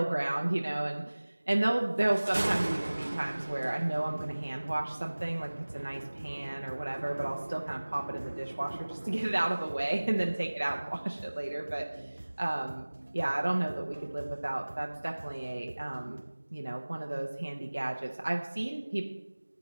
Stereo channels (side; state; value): both; inverted; correlation -1.00